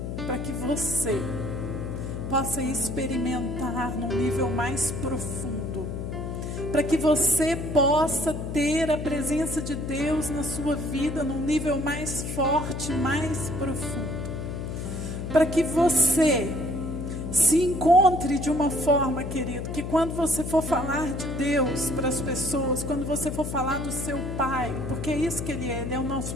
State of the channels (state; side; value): noise; left; hum, 5 dB below the sound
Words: para que você possa experimentar num nível mais profundo, para que você possa ter a presença de Deus na sua vida num nível mais forte, mais profundo, para que você se encontre de uma forma, querido, que quando você for falar de Deus para as pessoas, quando você for falar do seu Pai, porque é isso que Ele é o nosso